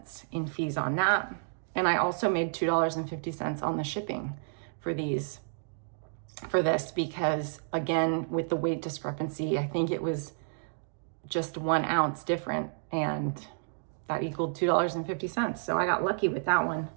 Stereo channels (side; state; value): left; silent; digital silence